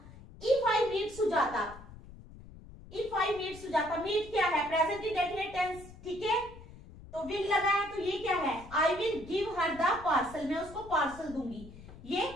if I meet Sujata, if I meet Sujata, meet क्या है, प्रेजेंट इंडेफिनिट टेंस, ठीक है। तो विल लगा है तो ये क्या है, आई will give her the parcel, मैं उसको पार्सल दूंगी, ये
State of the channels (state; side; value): noise; left; rumble, 17 dB below the sound